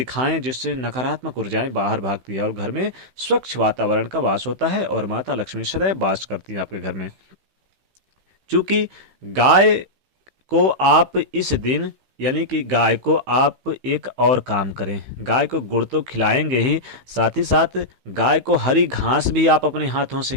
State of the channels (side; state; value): left; late; 16 ms